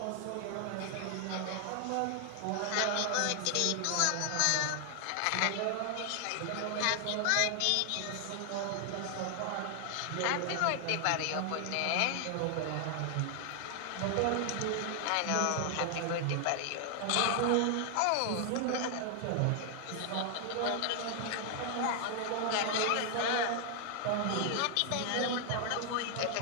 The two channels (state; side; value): different; both; correlation 0.00